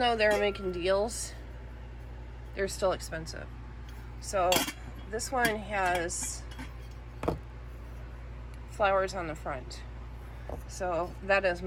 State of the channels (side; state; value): both; identical; correlation 1.00